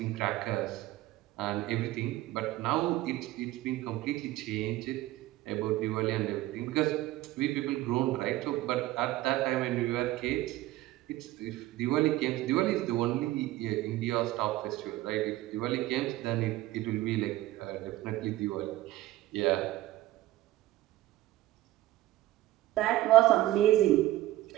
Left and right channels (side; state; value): left; quieter; 16.2 dB